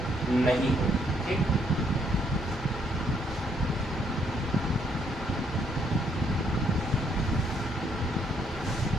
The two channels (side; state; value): both; normal; correlation 0.70